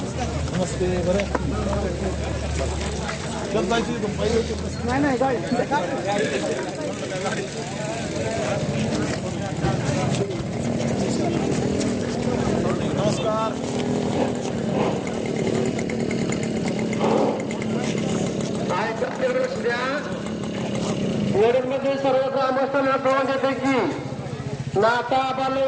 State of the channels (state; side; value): identical; both; correlation 1.00